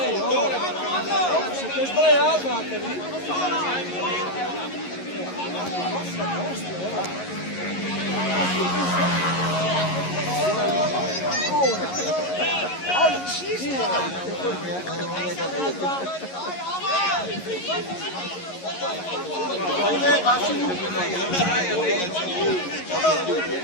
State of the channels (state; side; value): late; right; 11 ms